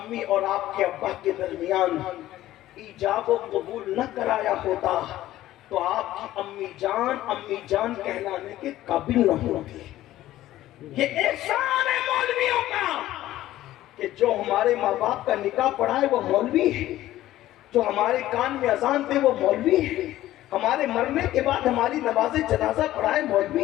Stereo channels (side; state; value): right; quieter; 14.6 dB